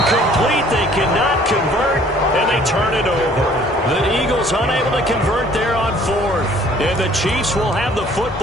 They cannot convert, and they turn it over. The Eagles unable to convert there on 4th. And the Chiefs will have the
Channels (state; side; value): normal; both; correlation 0.56